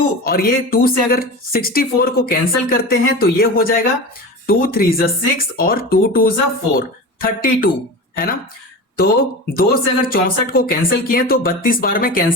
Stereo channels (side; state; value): both; normal; correlation 0.29